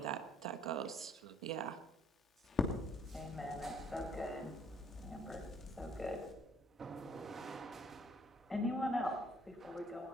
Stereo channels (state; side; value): normal; both; correlation 0.63